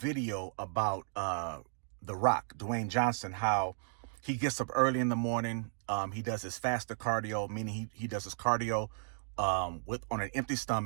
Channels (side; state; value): left; silent; digital silence